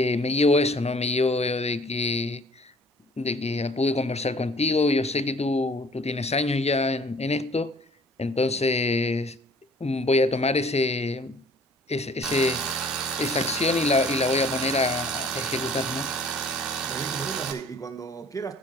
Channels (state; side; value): normal; both; correlation 0.53